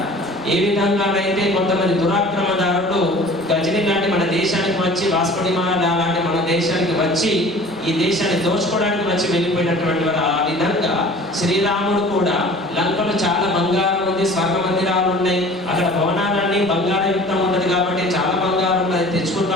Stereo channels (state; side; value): normal; both; correlation 0.45